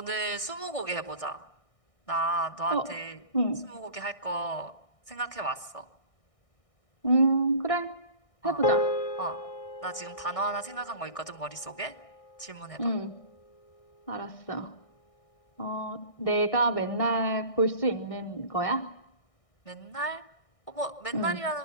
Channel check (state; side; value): late; right; 1.6 ms